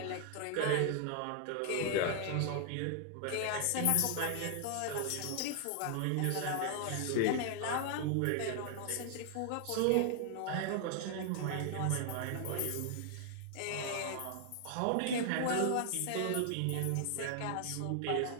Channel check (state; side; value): different; both; correlation 0.00